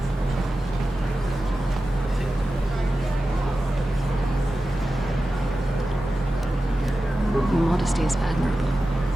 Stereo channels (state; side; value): normal; both; correlation 0.93